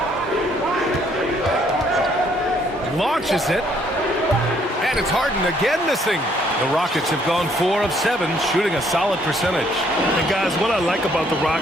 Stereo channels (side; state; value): both; normal; correlation 0.66